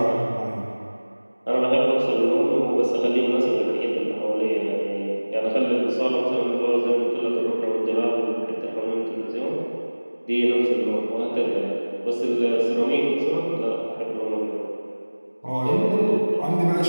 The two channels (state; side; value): inverted; both; correlation -1.00